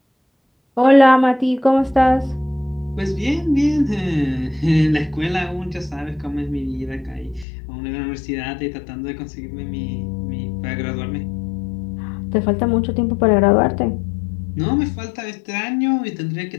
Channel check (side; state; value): right; drops out; at 7.5 s